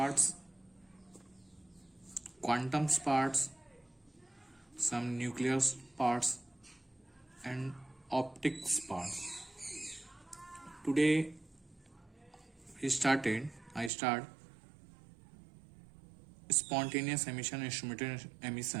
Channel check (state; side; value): drops out; left; at 13.9 s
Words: quantum parts, some nuclear parts and optics parts. Today I start spontaneous emission, instrumented